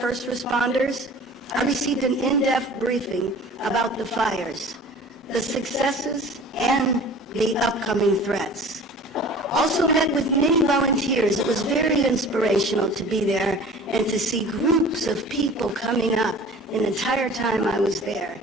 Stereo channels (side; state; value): both; normal; correlation 0.43